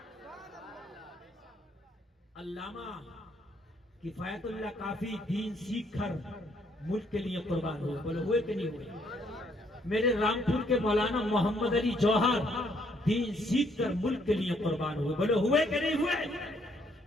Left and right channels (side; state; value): both; normal; correlation 0.69